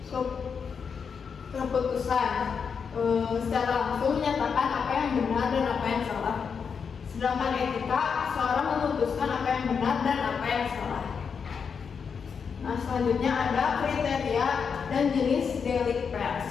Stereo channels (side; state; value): right; quieter; 6.2 dB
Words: keputusan. Secara langsung menyatakan apa yang benar dan apa yang salah. Sedangkan etika, seorang memutuskan apa yang benar dan apa yang salah. Nah, selanjutnya ada kriteria dan jenis delik pers.